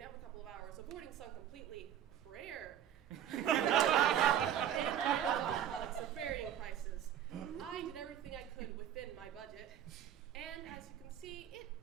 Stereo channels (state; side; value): quieter; left; 10.2 dB